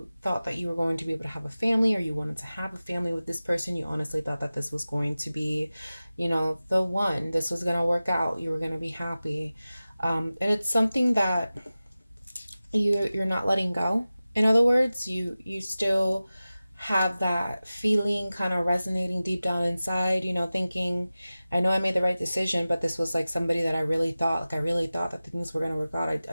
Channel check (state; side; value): inverted; both; correlation -0.96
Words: thought that you were going to be able to have a family, or you wanted to have a family with this person. You honestly thought that this was going to be, the one. This was going to work out. You were going to be happy. And it's something that you're not letting go. In other words, you still have that feeling kind of resonating deep down inside, you know, thinking, I know I made the right decision, but this was like somebody that I really thought, like I really thought that things were going to work out.